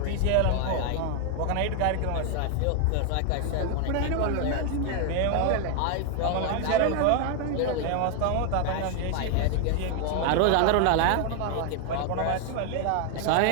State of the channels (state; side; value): different; both; correlation 0.00